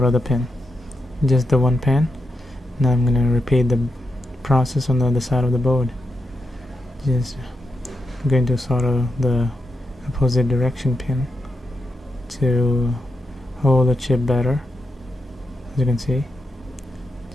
the pin, just the one pin. Now I'm gonna repeat the process on the other side of the board. Just going to solder the opposite direction pin to hold the chip better. As you can see,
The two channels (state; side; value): normal; both; correlation 0.85